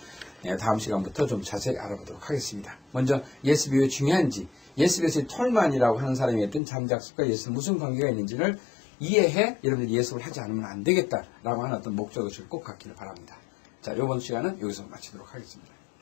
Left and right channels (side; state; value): right; drops out; at 6.6 s